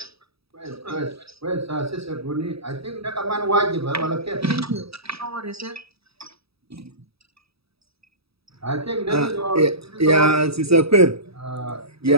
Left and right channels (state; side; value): late; left; 0.77 ms